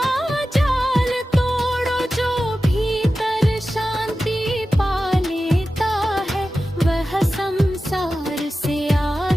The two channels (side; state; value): both; normal; correlation 0.94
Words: जाल तोड़ो। जो भीतर शांति पा लेता है, वह संसार से